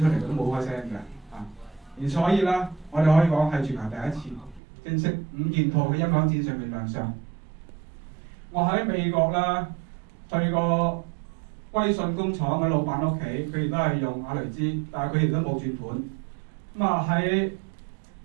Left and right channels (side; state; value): left; drops out; at 4.6 s